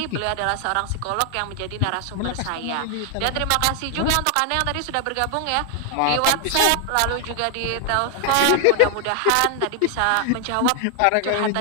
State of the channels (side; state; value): both; different; correlation 0.00